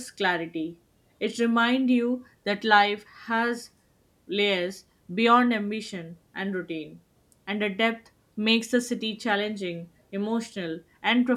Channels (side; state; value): both; identical; correlation 1.00